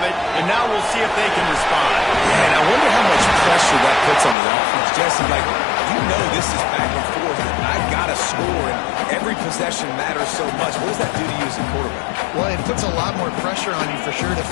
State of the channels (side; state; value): right; drops out; at 4.4 s